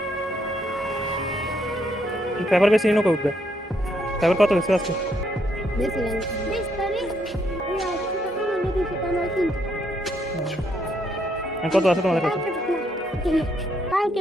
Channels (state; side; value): normal; both; correlation 0.74